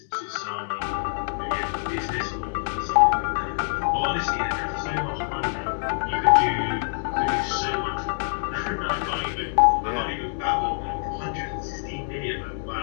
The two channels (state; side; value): silent; right; digital silence